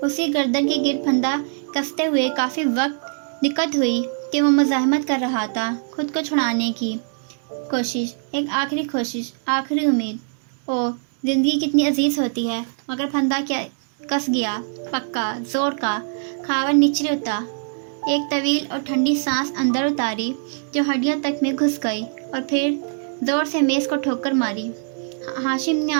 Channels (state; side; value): silent; left; 62 dB below the other